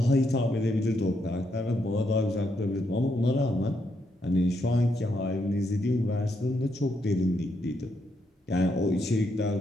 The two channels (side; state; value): both; normal; correlation 0.78